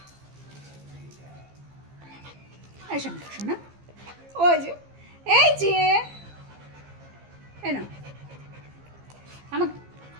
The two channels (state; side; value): late; left; 15 ms